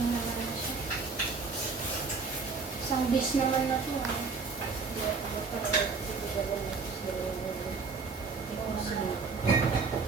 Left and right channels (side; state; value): left; quieter; 4.5 dB